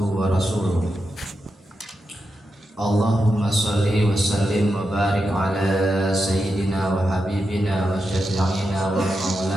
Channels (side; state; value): both; normal; correlation 0.87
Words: wa rasuluh. Allahumma salli wa sallim wa barik ala sayyidina wa habibina wa syafi'ina wa